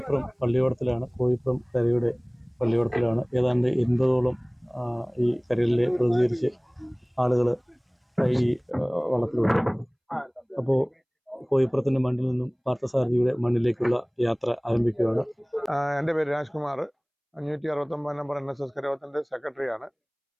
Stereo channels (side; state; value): both; identical; correlation 1.00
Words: പള്ളിയോടത്തിലാണ്. കോയിപ്പുറം കരയുടെ പള്ളിയോടത്തിലാണ്. ഏതാണ്ട് 80ഓളം ഈ കരയിലെ പ്രതികരിച്ച് ആളുകൾ ഈ വള്ളത്തിലുണ്ട്. അപ്പോൾ കോയിപ്പുറത്തിൻ്റെ മണ്ണിൽ നിന്നും പാർത്ഥസാരഥിയുടെ മണ്ണിലേക്കുള്ള യാത്ര ആരംഭിക്കുകയാണ്. എൻ്റെ പേര് രാജ്കുമാർ, 569 നമ്പർ NSS കരയോഗത്തിൻ്റെ സെക്രട്ടറിയാണ്.